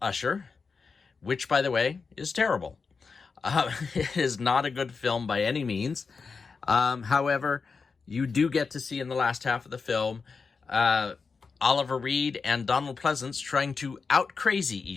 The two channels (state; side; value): quieter; right; 4.9 dB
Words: Usher, which, by the way, is terrible. It is not a good film by any means. However, you do get to see in the last half of the film Oliver Reed and Donald Pleasance trying to out-crazy